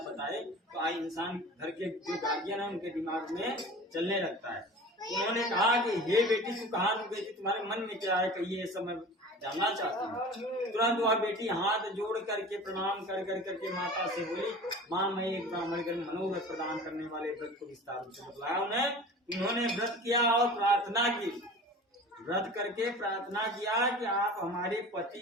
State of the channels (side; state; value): both; normal; correlation 0.39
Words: बताए, तो आई इंसान घर के जो गार्जियन है उनके दिमाग में चलने लगता है। उन्होंने कहा कि हे बेटी तू कहाँ गई थी, तुम्हारे मन में क्या है, कहिए सब मैं जानना चाहती हूँ। तुरंत वह बेटी हाथ जोड़ करके प्रणाम कर करके माता से बोली माँ मैं एक ब्राह्मण के मनोरथ प्रदान करने वाले व्रत को विस्तार से बतलाया। उन्होंने व्रत किया और प्रार्थना की, व्रत करके प्रार्थना किया कि आप हमारे पति